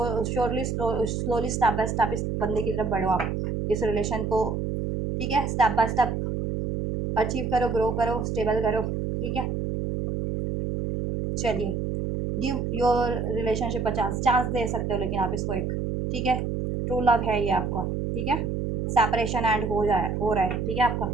slowly step by step इस बंदे की तरफ बढ़ो आप, इस रिलेशन को, ठीक है, स्टेप बाय स्टेप अचीव करो, ग्रो करो, स्टेबल करो, ठीक है। चलिए, गिव योर रिलेशनशिप का चांस, चांस दे सकते हो लेकिन आप इसको एक, ठीक है, ट्रू लव है ये आपका, ठीक है, सेपरेशन एंड हो रहा है, ठीक है, आपका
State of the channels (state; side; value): noise; right; hum, 1 dB below the sound